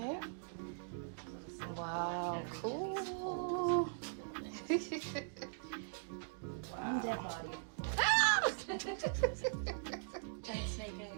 Wow. Cool. Wow. Dead body. Giant snake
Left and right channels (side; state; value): left; silent; digital silence